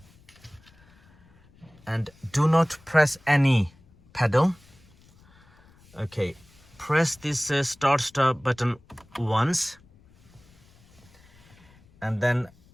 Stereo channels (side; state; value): left; noise; rumble, 29 dB below the sound